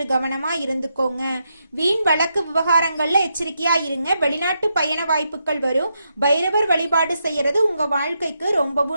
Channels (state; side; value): inverted; both; correlation -0.82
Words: கவனமா இருந்துக்கோங்க. வீண் வழக்கு விவகாரங்கள்ல எச்சரிக்கையா இருங்க. வெளிநாட்டு பயண வாய்ப்புகள் வரும். பைரவர் வழிபாடு செய்யறது உங்க வாழ்க்கைக்கு